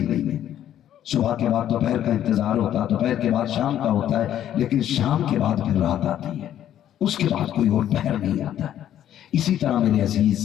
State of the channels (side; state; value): right; quieter; 11.1 dB